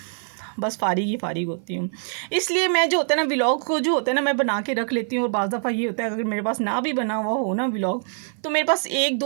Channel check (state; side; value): silent; left; 55 dB below the other